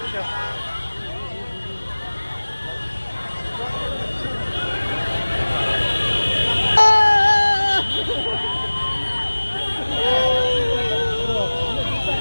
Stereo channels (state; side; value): inverted; both; correlation -1.00